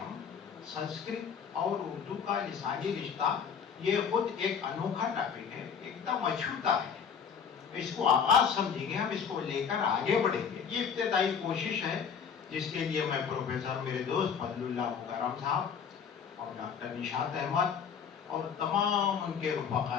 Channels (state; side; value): quieter; right; 7.0 dB